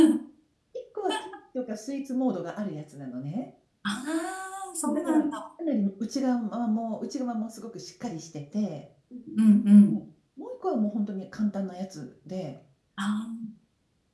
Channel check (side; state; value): both; identical; correlation 1.00